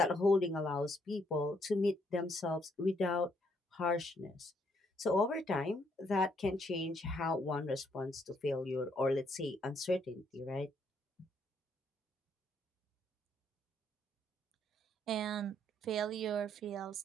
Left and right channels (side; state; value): both; normal; correlation 0.71